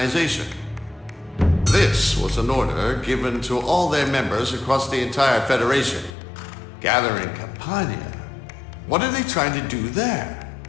This was an order given to all their members across the entire Federation. Gather in Campania. What are they trying to do there?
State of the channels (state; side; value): drops out; right; at 6.1 s